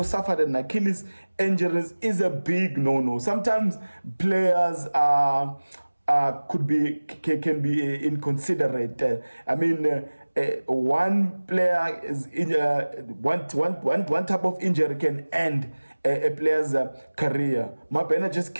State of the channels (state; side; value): inverted; both; correlation -1.00